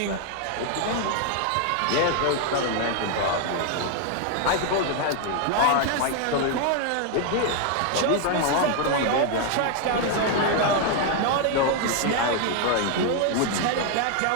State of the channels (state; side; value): different; both; correlation 0.00